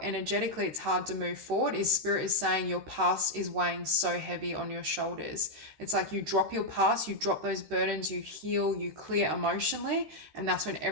energetically it's hard to move forward is Spirit is saying your past is weighing so heavy on your shoulders. It's like you drop your past, you drop those burdens, you heal, you clear emotionally, and that's when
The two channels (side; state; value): left; late; 13 ms